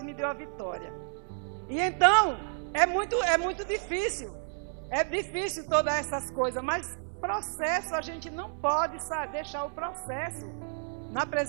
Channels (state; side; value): silent; left; digital silence